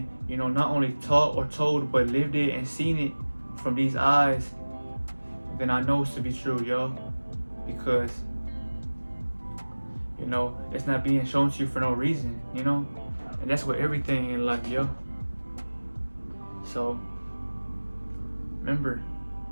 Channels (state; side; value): inverted; both; correlation -1.00